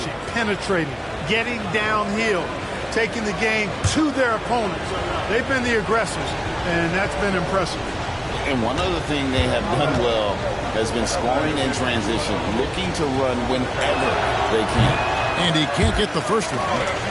penetrating, getting downhill, taking the game to their opponents. They've been the aggressors, and that's been impressive. And one other thing they have done well has been scoring in transition, looking to run whenever they can. And he can't get the first one.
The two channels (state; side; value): identical; both; correlation 1.00